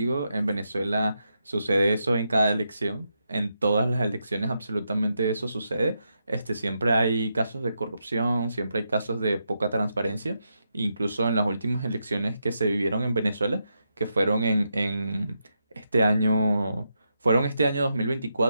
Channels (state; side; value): inverted; both; correlation -0.83